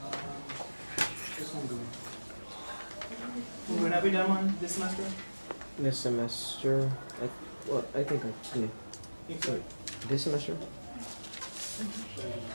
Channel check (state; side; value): inverted; both; correlation -1.00